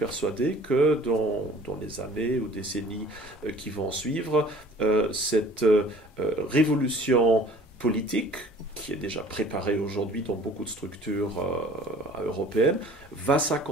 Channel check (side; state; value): both; normal; correlation 0.50